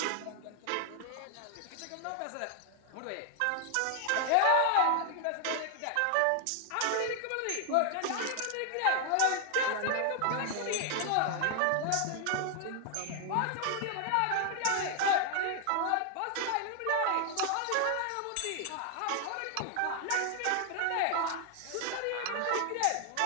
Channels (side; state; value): both; different; correlation 0.00